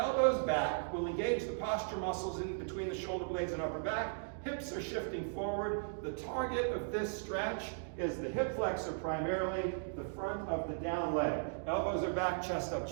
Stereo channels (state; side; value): silent; left; digital silence